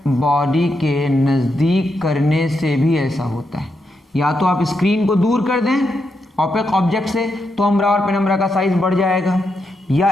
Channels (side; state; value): both; normal; correlation 0.83